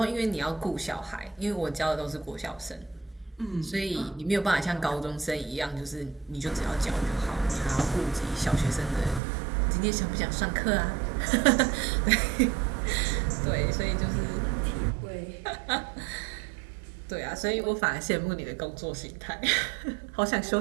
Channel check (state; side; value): drops out; left; at 9.2 s